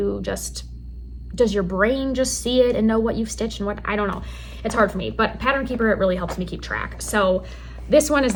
your brain just see it and know what you've stitched and what? I don't know. It's hard for me, but Pattern Keeper, it really helps me keep track. So this one is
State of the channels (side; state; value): both; identical; correlation 1.00